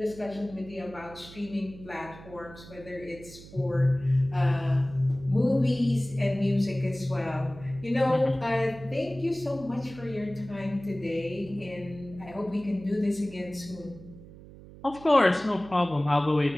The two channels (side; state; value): right; noise; hum, 18 dB below the sound